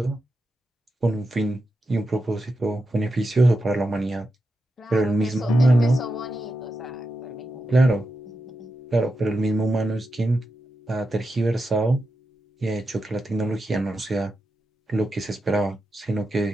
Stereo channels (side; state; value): both; normal; correlation 0.88